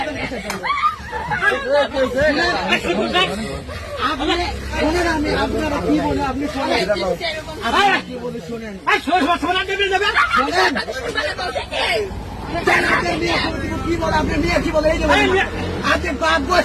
আপনারা কি বলে? আপনি শোনেন, কি বলে শোনেন? কি বলে? আপনার মেয়ে কি বলে? এই যে আপনি বাপ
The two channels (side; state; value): both; identical; correlation 1.00